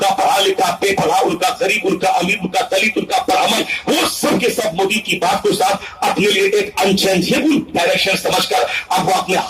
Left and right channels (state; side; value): identical; both; correlation 1.00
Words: پڑھا لکھا، بے پڑھا، ان کا غریب، ان کا امیر، ان کا دلت، ان کا پرامن، وہ سب کے سب مودی کی بات کو صاحب اپنے لیے ایک انچینجیبل ڈائریکشن سمجھ کر اب وہ اپنے